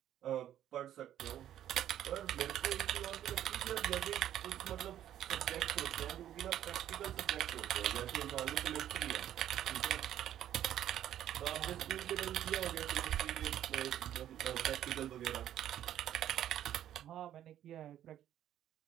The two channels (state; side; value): quieter; left; 11.4 dB